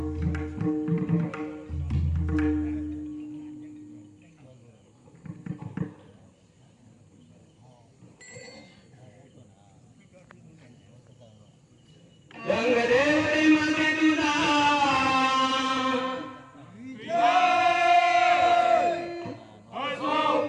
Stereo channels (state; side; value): identical; both; correlation 1.00